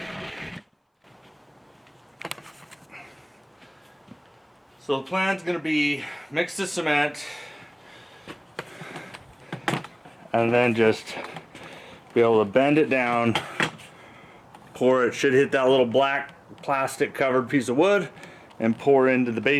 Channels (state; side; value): identical; both; correlation 1.00